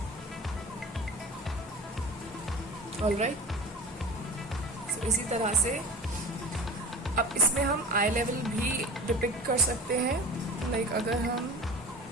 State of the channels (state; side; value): normal; both; correlation 0.35